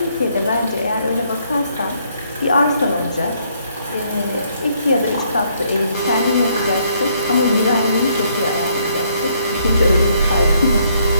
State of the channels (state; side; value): inverted; both; correlation -0.69